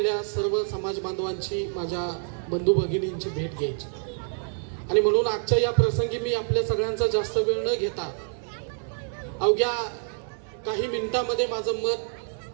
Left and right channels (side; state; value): left; silent; 57 dB below the other